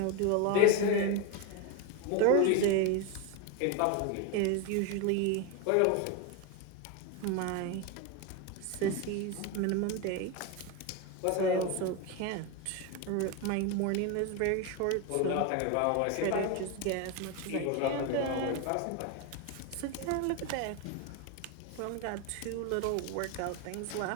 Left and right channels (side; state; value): both; different; correlation 0.03